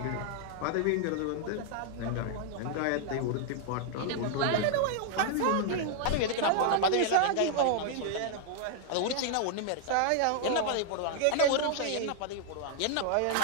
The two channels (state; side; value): different; both; correlation 0.00